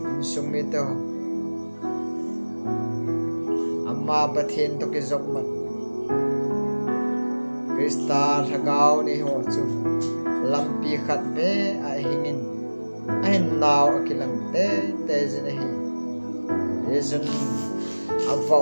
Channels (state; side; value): inverted; both; correlation -1.00